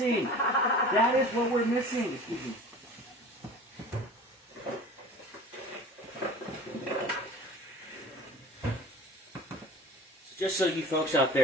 That is what we're missing. Excuse me. Just so you folks out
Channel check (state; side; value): normal; both; correlation 0.41